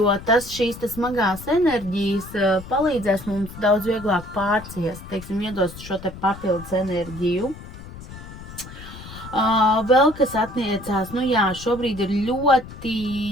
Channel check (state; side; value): noise; left; rumble, 14 dB below the sound